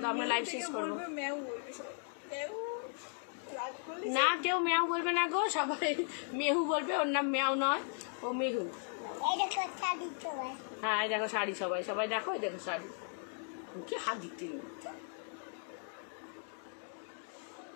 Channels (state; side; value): silent; right; 53 dB below the other